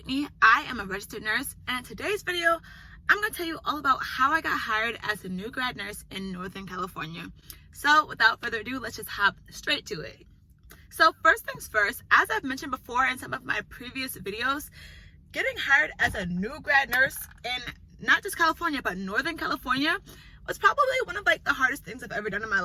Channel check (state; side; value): identical; both; correlation 1.00